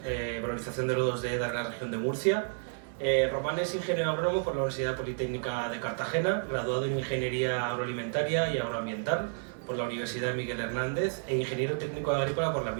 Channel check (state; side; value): silent; left; digital silence